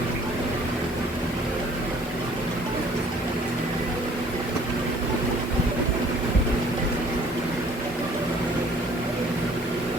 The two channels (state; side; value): normal; both; correlation 0.56